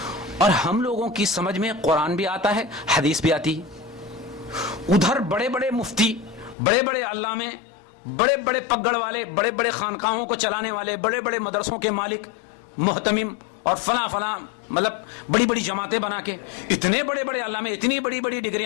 اور ہم لوگوں کی سمجھ میں قرآن بھی آتا ہے، حدیث بھی آتی ہے. ادھر بڑے بڑے مفتی، بڑے بڑے علامے، بڑے بڑے پگڑ والے، بڑے بڑے خانقاہوں کو چلانے والے، بڑے بڑے مدرسوں کے مالک، محتمم، اور فلاں فلاں، مطلب بڑی بڑی جماعتیں بنا کے، اتنے بڑے بڑے علامے، اتنی بڑی بڑی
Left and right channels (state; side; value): drops out; right; at 6.6 s